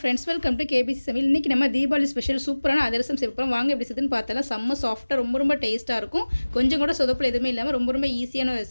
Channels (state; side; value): inverted; both; correlation -1.00